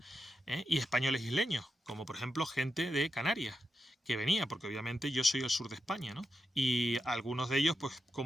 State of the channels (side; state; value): both; normal; correlation 0.87